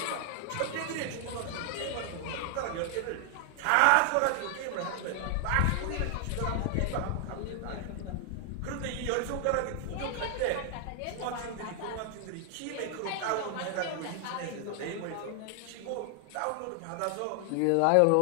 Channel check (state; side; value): different; both; correlation 0.00